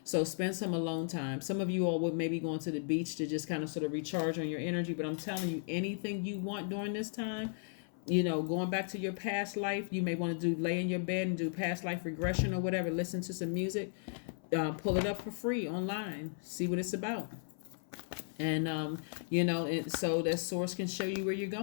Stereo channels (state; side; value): silent; right; 54 dB below the other